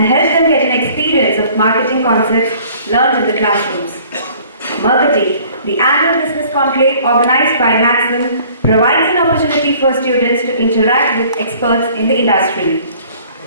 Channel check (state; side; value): inverted; both; correlation -0.54